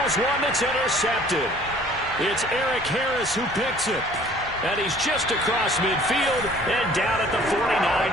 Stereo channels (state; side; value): normal; both; correlation 0.53